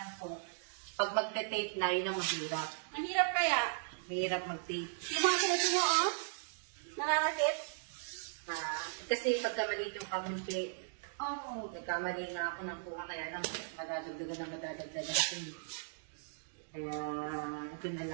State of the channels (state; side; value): silent; left; digital silence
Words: po, pag magte-tape na, yun ang mahirap. Ang hirap kaya. Mahirap mag-tape. Yung mga sunod mo, oh. Nararakit. Kasi pagka maliit yung kamumpi, Oo. nagkamali na ako ng kuha, kaya lang madadagdagan. Kaya, ito na